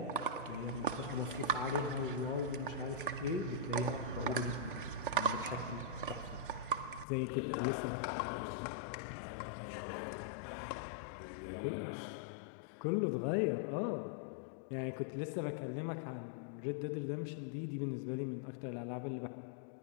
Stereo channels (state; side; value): drops out; right; at 7.1 s